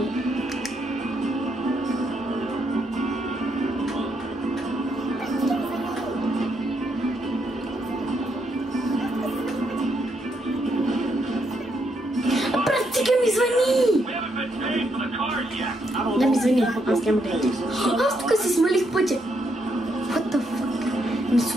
Практика ми звъни! Да ми звъни, аз няма да я. Аз тук си смалих пътя. What the fuck? Ми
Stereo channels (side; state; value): both; normal; correlation 0.77